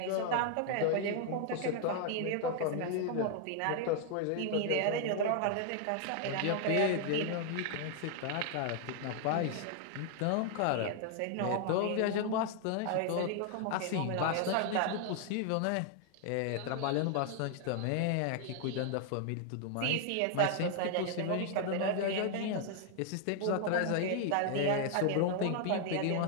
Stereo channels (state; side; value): different; both; correlation 0.00